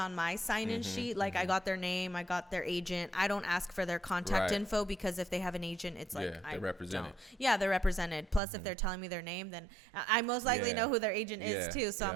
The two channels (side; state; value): left; drops out; at 8.4 s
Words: my sign-in sheet. Like I got their name, I got their agent. I don't ask for their contact info, because if they have an agent, it's like they're represented. Yeah, they're represented. Plus, if they're telling me their name, then I most likely know who their agent is too. So I'm